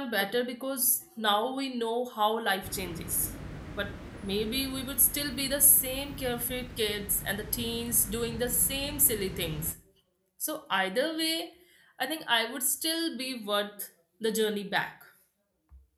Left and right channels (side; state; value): both; identical; correlation 1.00